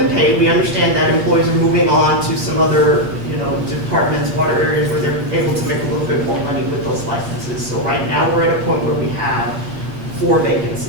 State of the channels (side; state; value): left; late; 8.9 ms